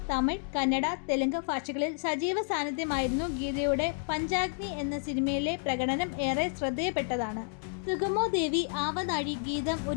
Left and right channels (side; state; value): right; silent; 58 dB below the other